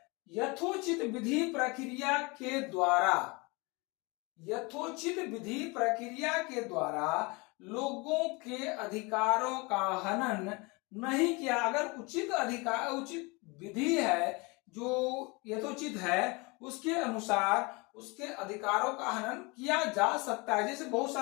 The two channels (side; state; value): right; quieter; 27.1 dB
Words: यथोचित विधि प्रक्रिया के द्वारा, यथोचित विधि प्रक्रिया के द्वारा लोगों के अधिकारों का हनन नहीं किया। अगर उचित विधि है जो यथोचित है, उसके अनुसार उसके अधिकारों का हनन किया जा सकता है। जैसे बहुत